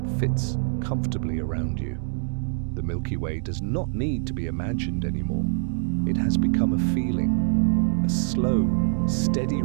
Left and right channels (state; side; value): silent; left; digital silence